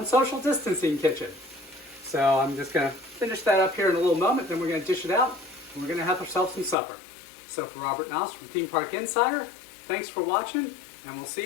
Social Distancing Kitchen. So I'm just going to finish that up here in a little moment, then we're going to dish it out, and we're going to have ourselves some supper. So for Robert Noss from Theme Park Insider, thanks for watching, and we'll see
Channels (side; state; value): right; drops out; at 6.8 s